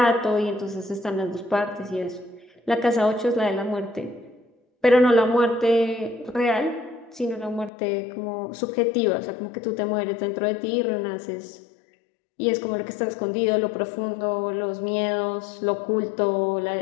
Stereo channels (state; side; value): drops out; right; at 7.7 s